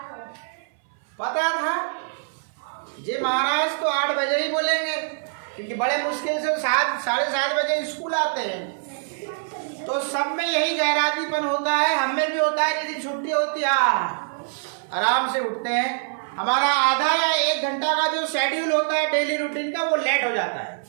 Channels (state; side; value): silent; left; 60 dB below the other